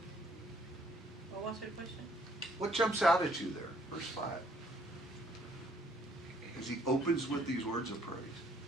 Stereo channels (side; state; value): both; normal; correlation 0.64